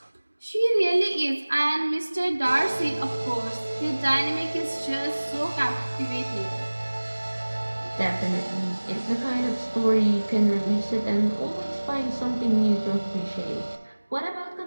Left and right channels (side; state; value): both; inverted; correlation -1.00